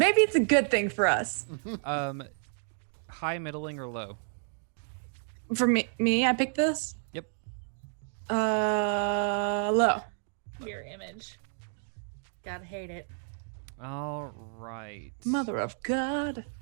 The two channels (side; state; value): left; silent; 57 dB below the other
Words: it's a good thing for us. High, middling, or low? For me, I picked this. Yep. Low. Your image. Gotta hate it. All right. Mother of God.